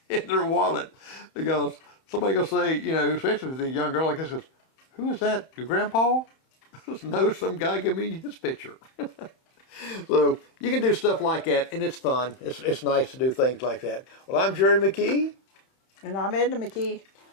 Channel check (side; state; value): right; late; 31 ms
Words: wallet. Because somebody going to say, especially with a young girl like this, goes, who is that, your grandpa? No, some guy give me his picture. So you can do stuff like that, and it's fun. It's nice to do things like that. Well, I'm Jerry McKee. And I'm Edna McKee.